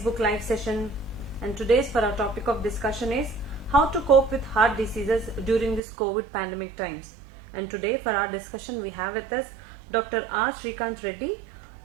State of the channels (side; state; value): left; drops out; at 5.8 s